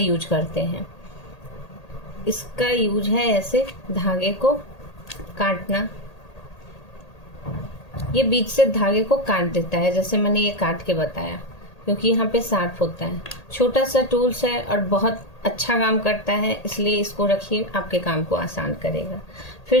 करते हैं। इसका यूज है ऐसे धागे को काटना। ये बीच से धागे को काट देता है, जैसे मैंने ये काट के बताया, क्योंकि यहाँ पे शार्प होता है। छोटा सा टूल्स है और बहुत अच्छा काम करता है, इसलिए इसको रखिए, आपके काम को आसान करेगा।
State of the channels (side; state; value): right; late; 1.8 ms